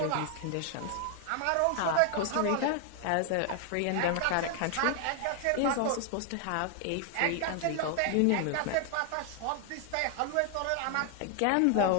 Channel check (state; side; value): different; both; correlation 0.00